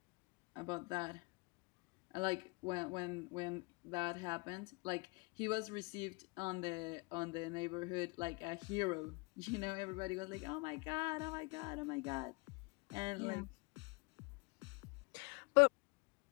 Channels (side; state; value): right; quieter; 28.9 dB